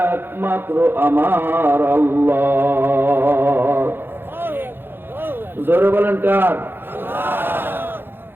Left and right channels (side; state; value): left; late; 0.10 ms